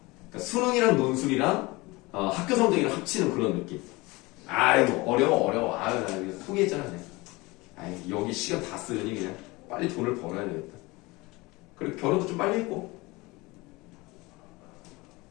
수능이랑 논술이랑 학교 성적이랑 합치는 그런 느낌. 아이고 어려워. 아유 나 이거 포기했잖아 그냥. 아이 여기 시간 다 쓰려니 그냥 빨리 돈을 벌어야 되겠다. 그리고 결혼도 좀 빨리 했고.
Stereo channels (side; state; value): right; quieter; 23.0 dB